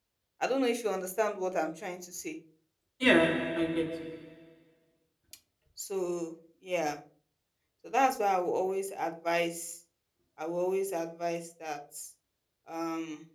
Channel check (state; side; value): identical; both; correlation 1.00